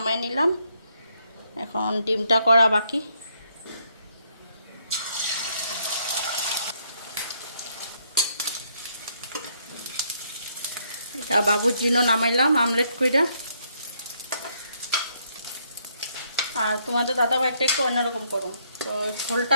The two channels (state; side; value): inverted; both; correlation -0.72